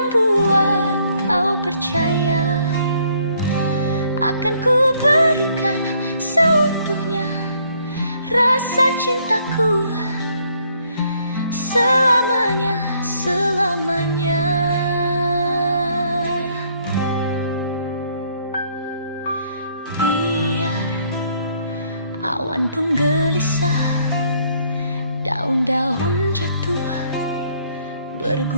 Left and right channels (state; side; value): inverted; both; correlation -0.66